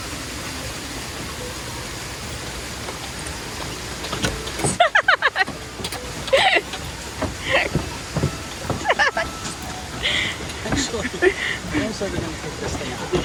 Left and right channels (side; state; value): both; identical; correlation 1.00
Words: Actually, I'm also going to take this thing out.